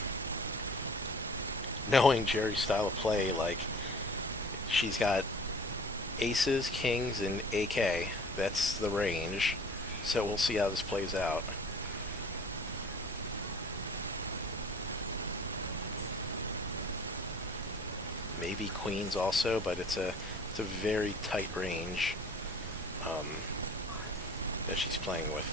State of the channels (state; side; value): normal; both; correlation 0.47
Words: Knowing Jerry's style of play, like, she's got aces, kings, and AK. That's the range. So we'll see how this plays out. Maybe queens also, but it's a very tight range that she's playing with